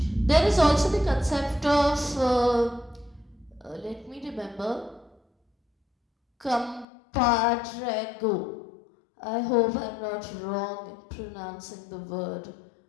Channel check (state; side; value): drops out; right; at 6.9 s